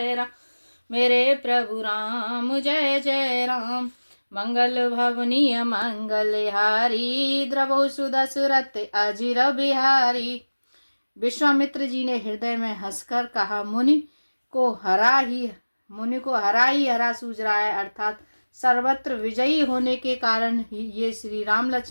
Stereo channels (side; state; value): both; inverted; correlation -1.00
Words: राम मेरे प्रभु राम जय जय राम। मंगल भवनीय मंगल हारी द्रवो सुदशरथ अजिर बिहारी। विश्वामित्र जी ने हृदय में हंसकर कहा, मुनि को हरा ही हरा सूझ रहा है, अर्थात सर्वत्र विजयी होने के कारण ही ये श्री राम